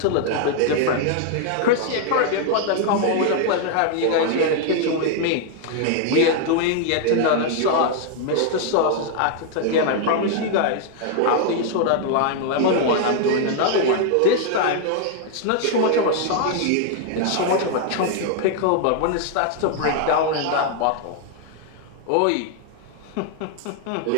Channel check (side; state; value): both; different; correlation 0.00